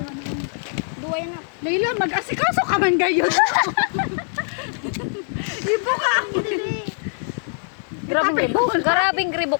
Duway na. Layla, mag-asikaso ka man gayon. Ibo ka! Grabing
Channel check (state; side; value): silent; right; digital silence